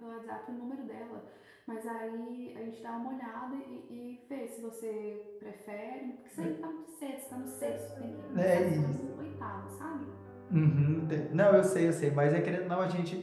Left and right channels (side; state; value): both; identical; correlation 1.00